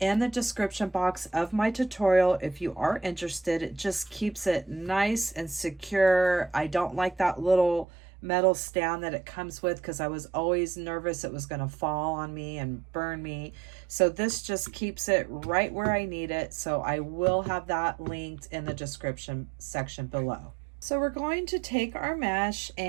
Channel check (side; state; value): left; drops out; at 7.9 s